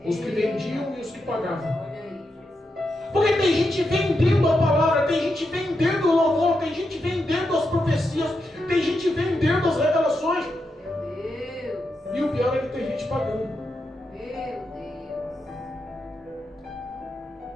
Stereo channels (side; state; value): both; normal; correlation 0.85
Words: os que vendiam e os que pagavam. Porque tem gente vendendo a palavra, tem gente vendendo o louvor, tem gente vendendo as profecias, tem gente vendendo as revelações. E o pior é que tem gente pagando.